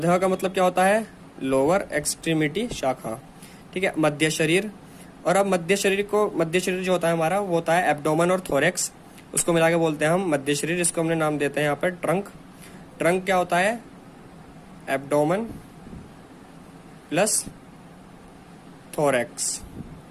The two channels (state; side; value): identical; both; correlation 1.00